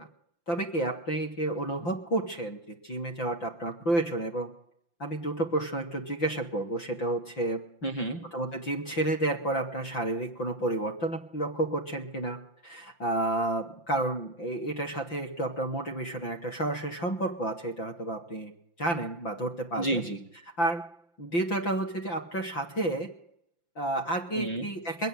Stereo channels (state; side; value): late; right; 5.9 ms